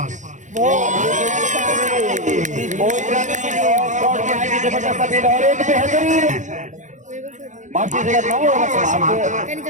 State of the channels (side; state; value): left; late; 0.36 ms